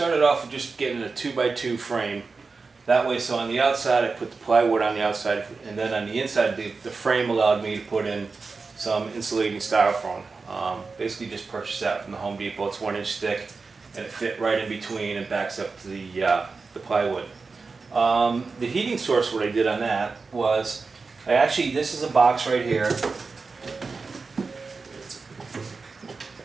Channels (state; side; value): quieter; left; 4.4 dB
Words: off with just getting a 2x2 frame. That way, so on the outside I put the plywood on the outside, and then on the inside the frame allowed me to put in some insulating styrofoam. Basically just purchased that from the Home Depot. It's 1 inch thick and it fit right in between and backs up to the plywood. The heating source, what I did on that was, this is a box right here.